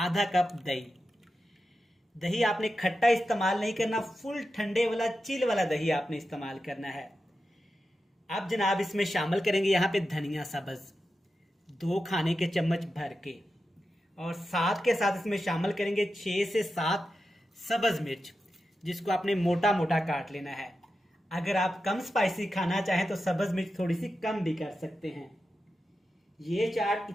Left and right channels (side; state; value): both; normal; correlation 0.90